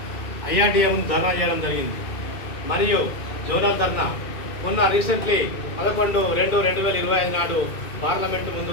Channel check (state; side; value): late; right; 2.4 ms